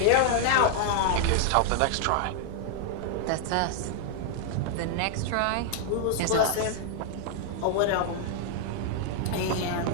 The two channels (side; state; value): both; different; correlation 0.00